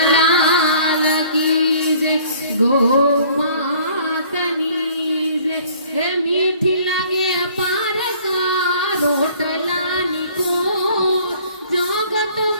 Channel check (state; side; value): inverted; both; correlation -0.55